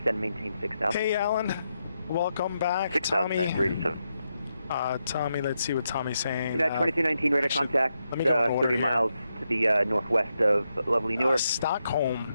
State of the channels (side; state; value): both; inverted; correlation -0.84